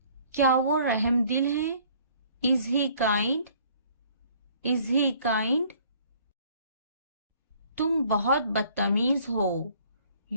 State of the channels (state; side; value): inverted; both; correlation -0.57